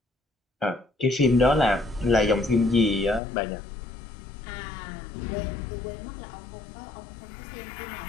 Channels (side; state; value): right; drops out; at 3.2 s